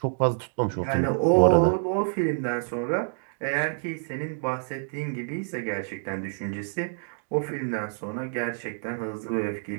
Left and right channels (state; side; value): silent; left; digital silence